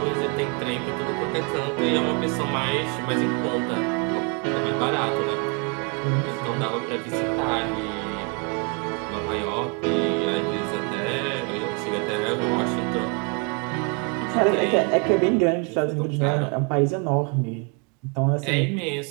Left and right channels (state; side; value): quieter; left; 34.9 dB